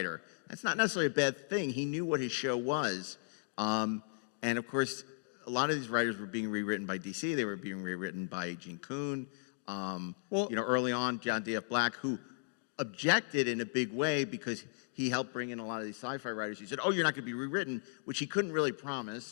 That's not necessarily a bad thing. He knew what his show was. And, of course, a lot of these writers were being rewritten by DC. They were being rewritten by Gene Kuhn. Early on, John D.F. Black, who objected in a big way because he helped bring in a lot of these sci-fi writers. He said, you're not going to be rewritten, which he couldn't really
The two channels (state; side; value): silent; right; digital silence